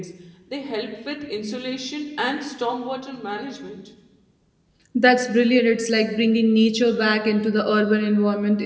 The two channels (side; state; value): both; identical; correlation 1.00